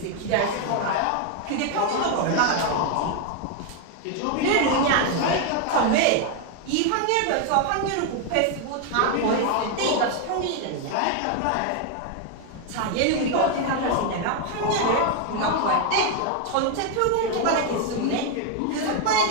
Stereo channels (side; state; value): both; different; correlation 0.01